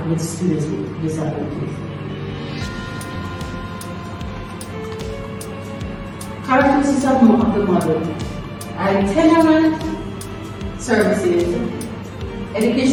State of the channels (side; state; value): both; identical; correlation 1.00